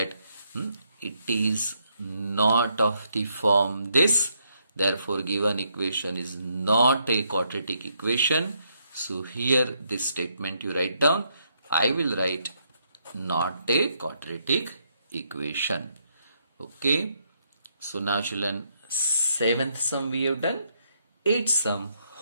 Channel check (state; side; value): inverted; both; correlation -0.75